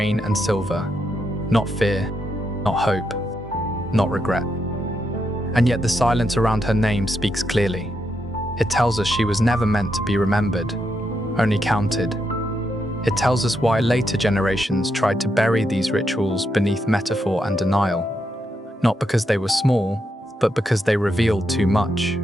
and silver, not fear, not hope, not regret. And yet the silence around her name speaks clearly. It tells us she was never meant to be remembered, only counted. It tells us why later generations tried to bury these rituals beneath metaphor and denial, not because they were small, but because they revealed too much.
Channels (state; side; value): normal; both; correlation 0.81